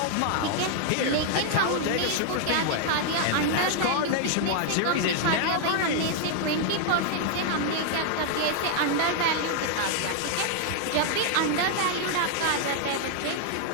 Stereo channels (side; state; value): both; different; correlation 0.00